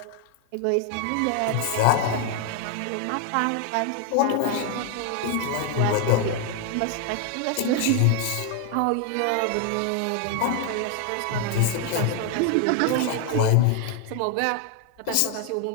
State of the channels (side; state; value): both; different; correlation 0.00